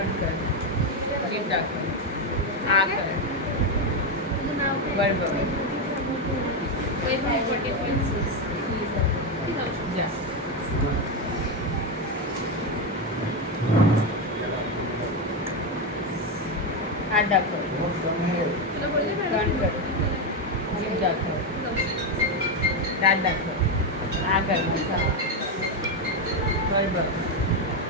कर. जीभ दाखव. हा कर. वर बघ. जा. हात दाखव. टर्न कर. जीभ दाखव. दात दाखव. हा कर. वर बघ.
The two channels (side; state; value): both; normal; correlation 0.09